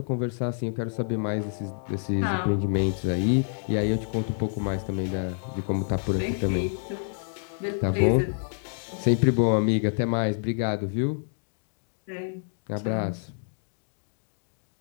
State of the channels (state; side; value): silent; right; digital silence